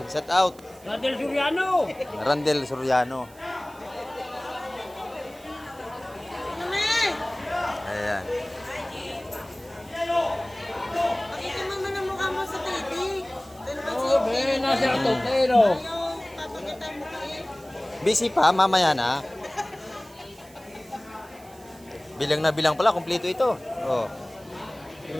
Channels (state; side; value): noise; right; hiss, 24 dB below the sound